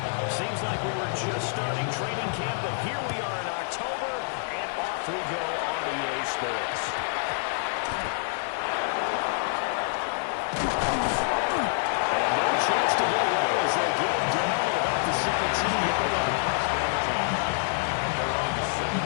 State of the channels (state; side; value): silent; right; 60 dB below the other